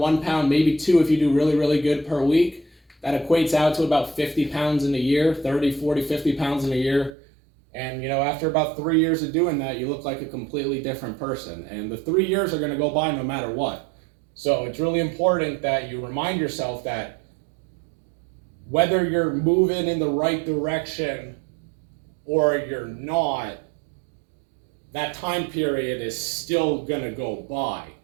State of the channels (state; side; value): drops out; left; at 7.1 s